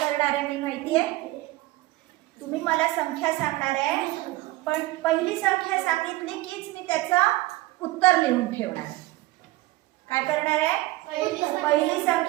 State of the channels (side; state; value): left; quieter; 18.6 dB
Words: आहे मी माहिती आहे? तुम्ही मला संख्या सांगणार आहे, पण पहिली संख्या सांगितली कीच मी त्याचं उत्तर लिहून ठेवणार आहे. काय करणार आहे? पहिली